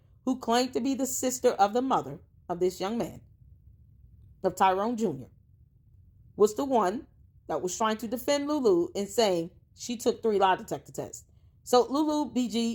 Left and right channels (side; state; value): both; identical; correlation 1.00